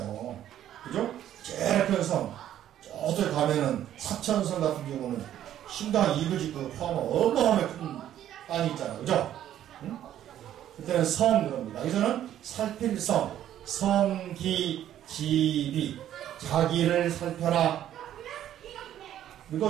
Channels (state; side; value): quieter; left; 11.5 dB